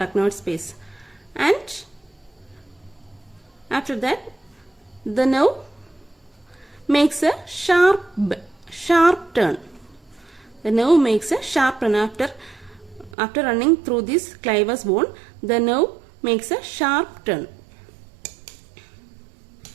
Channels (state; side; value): drops out; left; at 13.2 s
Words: space, and after that the nerve makes a sharp turn. The nerve makes a sharp turn after running through this clivus bone. The nerve makes a sharp turn.